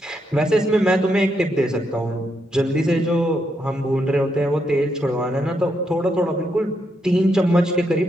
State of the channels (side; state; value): both; normal; correlation 0.79